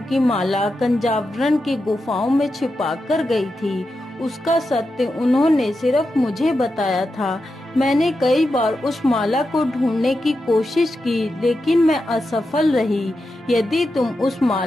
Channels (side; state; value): both; normal; correlation 0.89